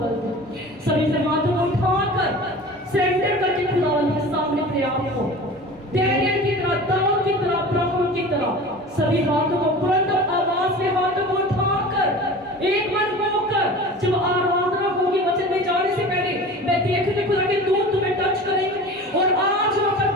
दे। सभी से हाथों को उठाकर सरेंडर करके खुदावन के सामने अपने आप को डैनियल की तरह, दाऊद की तरह, अब्राहम की तरह सभी हाथों को बुलंद आवाज में हाथों को उठाकर एक मन होकर जब आराधना होगी वचन में जाने से पहले मैं देखने खुदा के दूत तुम्हें टच करेंगे और आज वहां पर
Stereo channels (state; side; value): normal; both; correlation 0.37